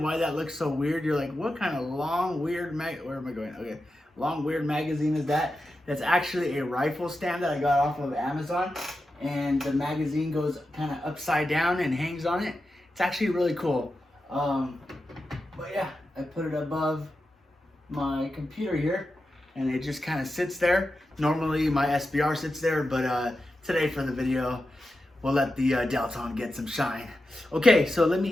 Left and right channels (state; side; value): normal; both; correlation 0.90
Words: why that looks so weird, you're like, what kind of long, weird where am I going? Okay, long, weird magazine is that? That's actually a rifle stand that I got off of Amazon. And the magazine goes kind of upside down and hangs on it. It's actually really cool. But yeah, I put it above my computer here, and it just kind of sits there. Normally my SBR sits there, but today for the video, we'll let the Delton get some shine. Okay, so let me